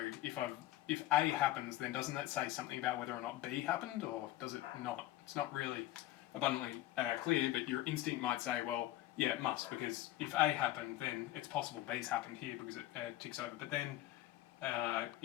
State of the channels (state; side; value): quieter; right; 15.3 dB